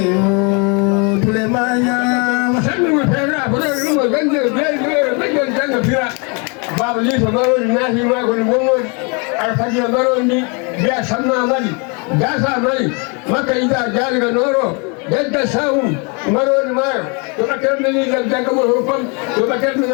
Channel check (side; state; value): right; quieter; 33.0 dB